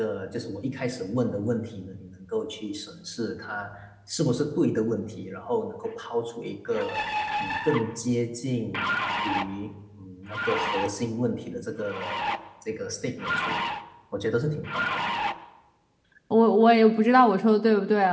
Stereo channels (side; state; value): both; identical; correlation 1.00